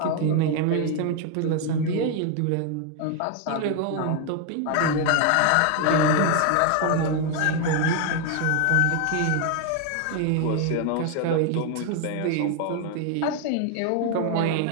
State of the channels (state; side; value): different; both; correlation 0.00